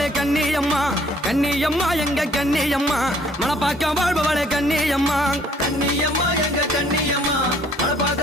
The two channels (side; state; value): both; normal; correlation 0.60